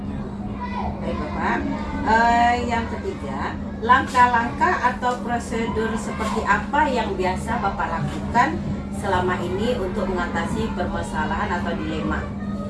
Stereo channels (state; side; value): identical; both; correlation 1.00